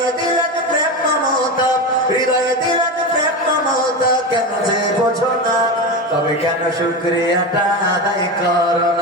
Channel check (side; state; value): both; normal; correlation 0.20